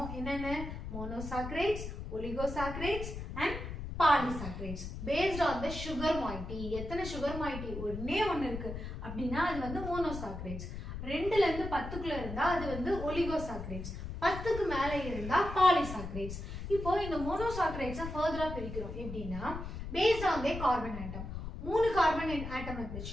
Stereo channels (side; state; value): left; noise; rumble, 8 dB below the sound